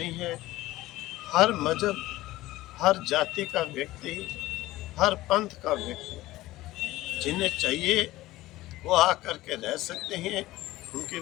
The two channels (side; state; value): right; quieter; 17.2 dB